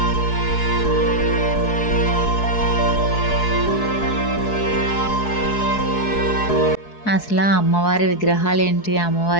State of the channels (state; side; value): late; right; 4.7 ms